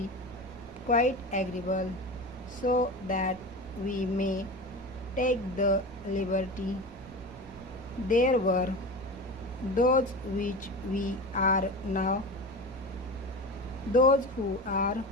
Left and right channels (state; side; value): noise; right; rumble, 19 dB below the sound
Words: quite agreeable, so that we may take the liberty. There were those which we are now, those who are,